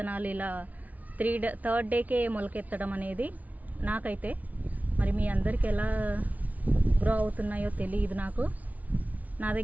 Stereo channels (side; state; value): left; late; 0.072 ms